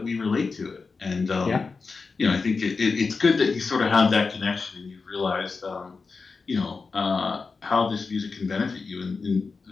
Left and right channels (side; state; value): right; quieter; 4.5 dB